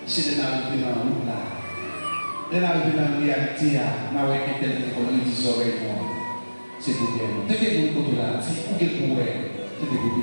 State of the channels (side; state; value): both; inverted; correlation -1.00